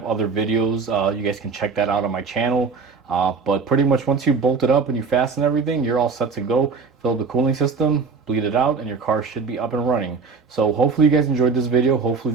other videos. You guys can check that out on my channel. But pretty much once you bolt it up and you fasten everything, you're all set to go. Fill the cooling system, bleed it out, and your car should be up and running. So hopefully you guys enjoyed this video. Hopefully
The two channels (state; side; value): quieter; left; 4.8 dB